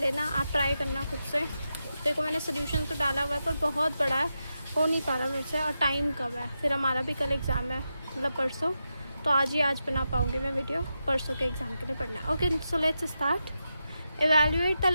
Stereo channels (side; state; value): both; inverted; correlation -0.88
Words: आप ट्राई करना खुद से। देखो मैंने सोल्यूशन तो डाला हुआ है पर बहुत बड़ा है, हो नहीं पा रहा मेरे से, और टाइम कम है। फिर हमारा भी कल एग्ज़ाम है, मतलब परसों, तो आज बना पाऊँगी मैं वीडियो, परसों के एग्ज़ाम के लिए पढ़ना है। Okay, so let's start. Evaluate the